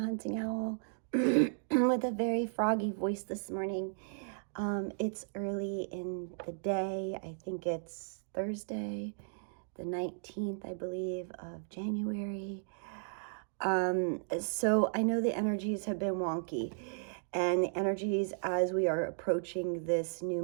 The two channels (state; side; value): silent; left; digital silence